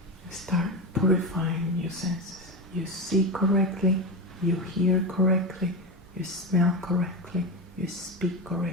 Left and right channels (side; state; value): both; normal; correlation 0.18